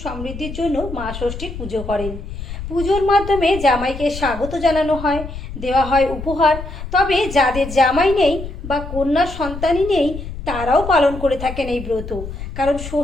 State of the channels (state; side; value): noise; left; rumble, 9 dB below the sound